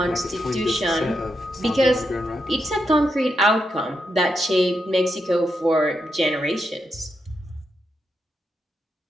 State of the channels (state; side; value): normal; both; correlation 0.83